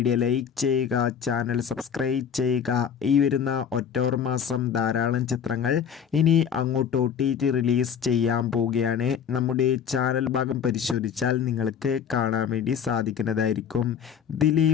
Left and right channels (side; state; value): right; quieter; 7.8 dB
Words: ലൈക്ക് ചെയ്യുക, ചാനൽ സബ്സ്ക്രൈബ് ചെയ്യുക. ഈ വരുന്ന ഒക്ടോബർ മാസം ധാരാളം ചിത്രങ്ങൾ ഇനി അങ്ങോട്ട് OTT റിലീസ് ചെയ്യാൻ പോവുകയാണ്. നമ്മുടെ ചാനൽ ഭാഗം പരിശോധിച്ചാൽ നിങ്ങൾക്ക് കാണാൻ വേണ്ടി സാധിക്കുന്നതായിരിക്കും.